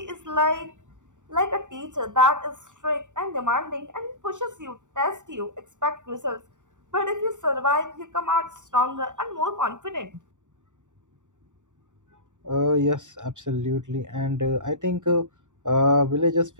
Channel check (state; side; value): late; left; 0.86 ms